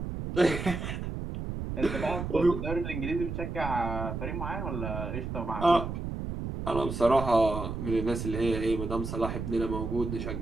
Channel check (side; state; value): right; noise; rumble, 5 dB below the sound